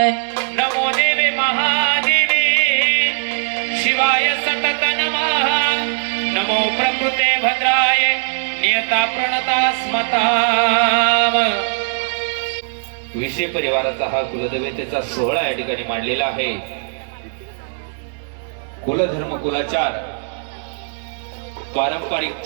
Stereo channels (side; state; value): left; silent; digital silence